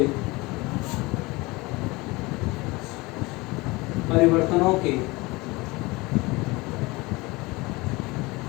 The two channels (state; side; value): quieter; right; 23.1 dB